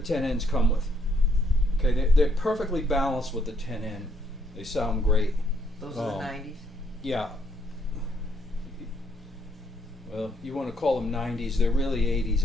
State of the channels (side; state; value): both; normal; correlation 0.71